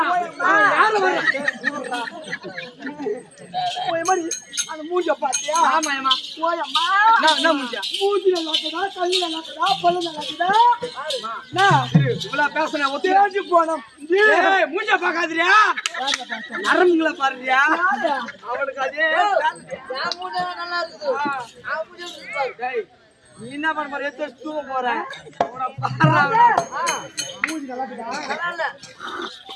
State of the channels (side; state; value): both; identical; correlation 1.00